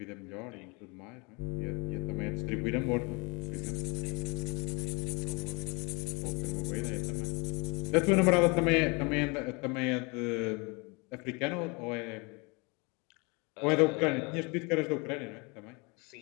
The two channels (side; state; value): right; quieter; 29.3 dB